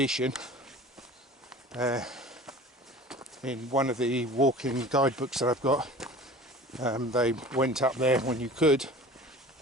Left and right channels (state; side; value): normal; both; correlation 0.41